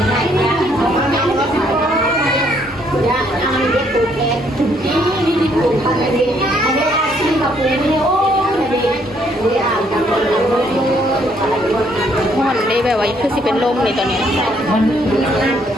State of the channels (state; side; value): normal; both; correlation 0.68